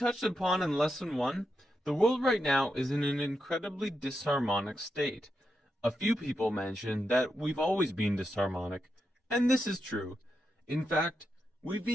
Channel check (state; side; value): normal; both; correlation 0.86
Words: upon in Lesson 1, the world right now is in an incredibly disharmonic state. A few people mention that we've always been disharmonic, and this is true. In fact, we've